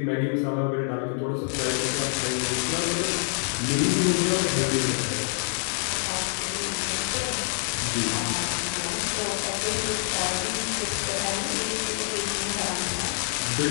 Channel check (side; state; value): right; silent; 61 dB below the other